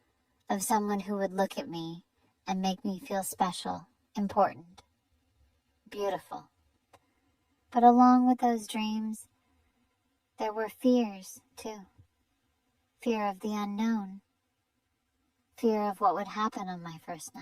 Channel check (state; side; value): identical; both; correlation 1.00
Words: of someone who would look at me and make me feel special, important. beautiful. But along with those dreams, there were fears, too. Fear of the unknown. Fear of what would happen on my first